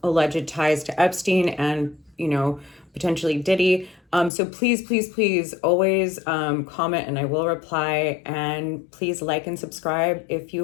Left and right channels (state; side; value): drops out; right; at 4.3 s